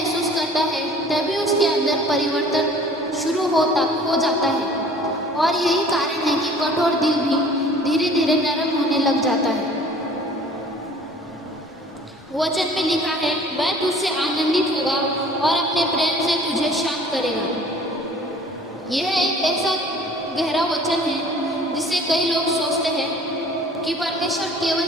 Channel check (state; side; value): normal; both; correlation 0.50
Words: करता है तभी उसके अंदर परिवर्तन शुरू हो जाता है। और यही कारण है कि कठोर दिल भी धीरे धीरे नरम होने लग जाता है। वचन में लिखा है, वह तुझसे आनंदित होगा और अपने प्रेम से तुझे शांत करेगा। यह एक ऐसा गहरा वचन है जिसे कई लोग सोचते हैं कि परमेश्वर केवल